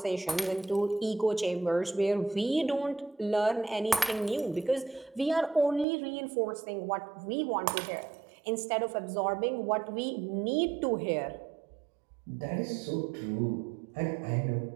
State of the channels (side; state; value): left; drops out; at 5.9 s